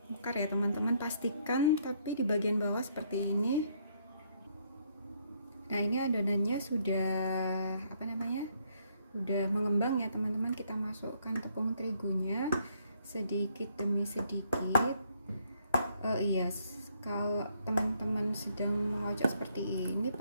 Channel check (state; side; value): inverted; both; correlation -0.70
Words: mekar ya teman-teman. Pastikan tapi di bagian bawah seperti ini. Nah, ini adonannya sudah udah mengembang ya teman-teman. Kita masukkan tepung terigunya sedikit demi sedikit. Kalau teman-teman sedang mengocok seperti ini,